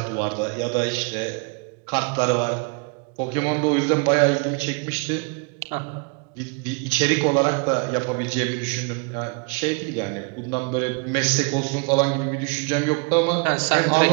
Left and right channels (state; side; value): quieter; left; 33.4 dB